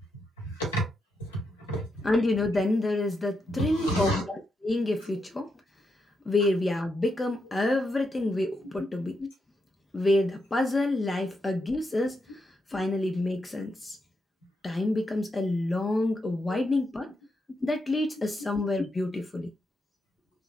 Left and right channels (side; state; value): both; normal; correlation 0.83